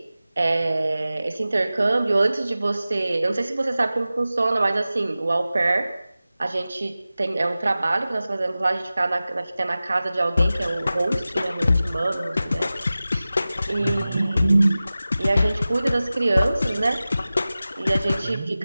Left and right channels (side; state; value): both; inverted; correlation -0.96